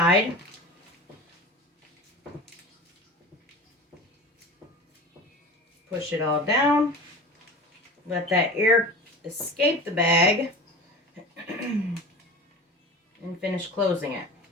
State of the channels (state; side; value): normal; both; correlation 0.35